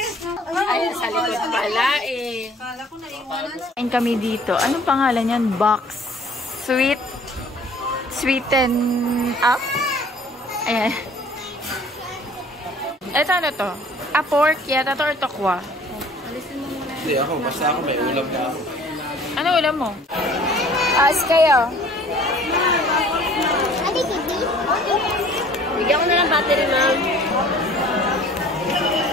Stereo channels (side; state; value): both; normal; correlation 0.52